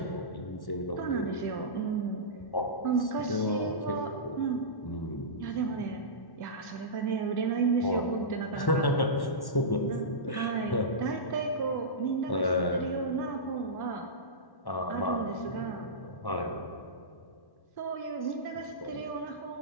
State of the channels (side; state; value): right; late; 1.1 ms